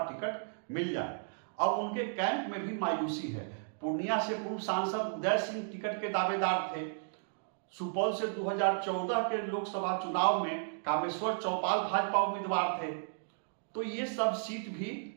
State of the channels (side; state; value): left; silent; digital silence